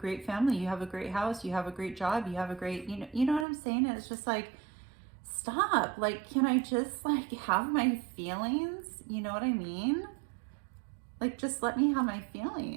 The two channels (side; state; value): left; drops out; at 3.5 s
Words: family. You have a great house. You have a great job. You have a great, you know what I'm saying? And it's just like, stop. Like, can I just like have my feelings? You know what I mean? Like, just let me have my